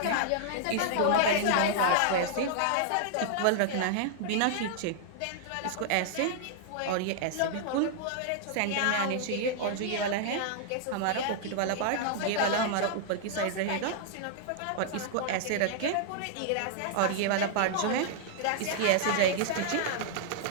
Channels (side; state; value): both; different; correlation -0.01